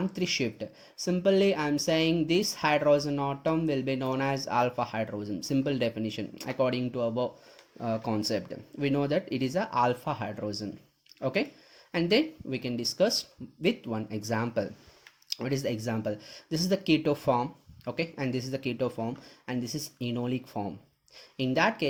shift. Simply, I am saying this hydrogen atom will be known as alpha hydrogen. Simple definition according to our concept. We know that it is a alpha hydrogen. Okay, and then we can discuss with one example. What is the example? This is the keto form. Okay, and this is the keto form, and this is enolic form. In that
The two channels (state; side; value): identical; both; correlation 1.00